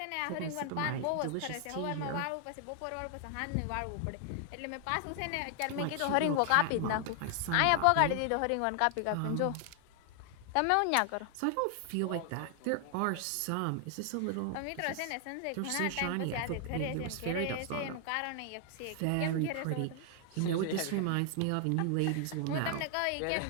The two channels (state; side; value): different; both; correlation 0.00